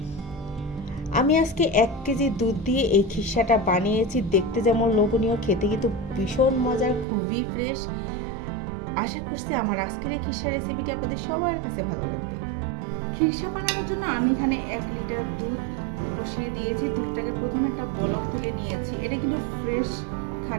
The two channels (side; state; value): left; drops out; at 7.1 s